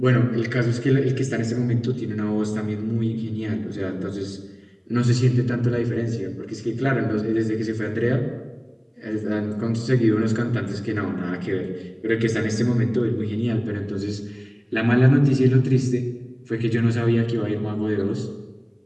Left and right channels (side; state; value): both; identical; correlation 1.00